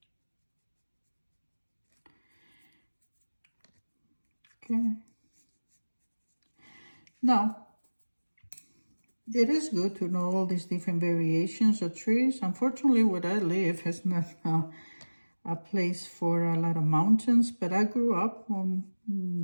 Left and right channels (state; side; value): inverted; both; correlation -1.00